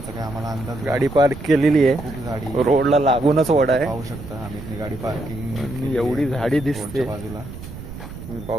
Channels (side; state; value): right; noise; rumble, 12 dB below the sound